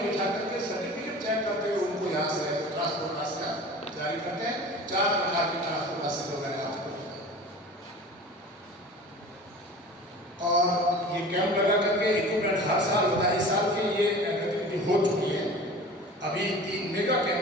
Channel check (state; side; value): normal; both; correlation 0.39